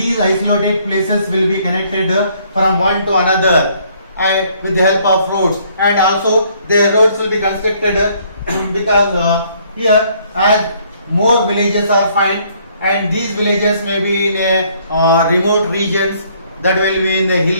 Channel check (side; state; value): both; inverted; correlation -0.64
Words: isolated places will be connected from one to another with the help of roads. And also the roads will be constructed because here as more villages are found, and these villages may be in remote regions, that will be in the